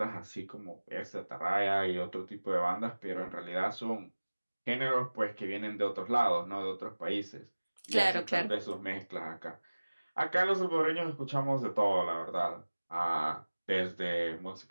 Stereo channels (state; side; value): inverted; both; correlation -1.00